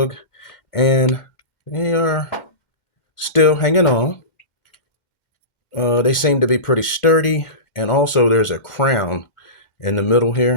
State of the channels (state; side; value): late; right; 2.1 ms